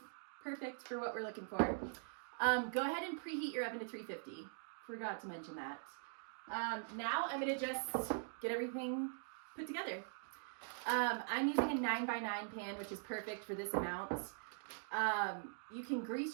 perfect for what we're looking for. Go ahead and preheat your oven to 350. Forgot to mention that. Now I'm gonna just get everything put together. I'm using a 9x9 pan, which is perfect for this amount. You can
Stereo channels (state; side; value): silent; left; digital silence